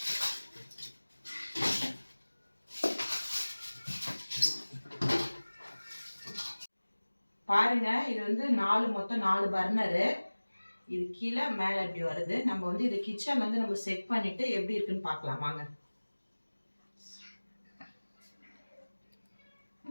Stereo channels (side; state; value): both; inverted; correlation -1.00